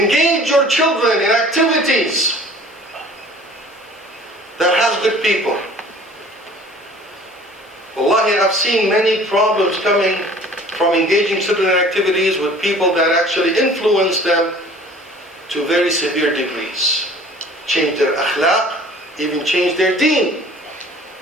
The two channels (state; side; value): normal; both; correlation 0.49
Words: your children in activities that has good people. Wallahi, I've seen many problems coming from engaging children in activities with people that actually influence them to very severe degrees. Change their akhlaq, even change their deen.